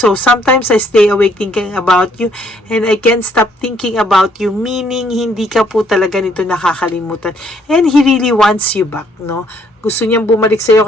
sometimes I stay awake thinking about you, and I can't stop thinking about you, meaning hindi ka po talaga nito nakakalimutan. And he really wants you back, no? Gusto niyang bumalik sa iyo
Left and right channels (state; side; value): normal; both; correlation 0.67